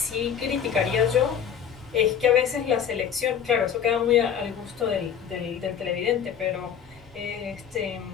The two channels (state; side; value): quieter; right; 8.2 dB